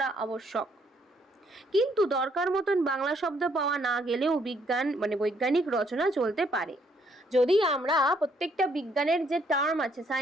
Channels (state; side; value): normal; both; correlation 0.69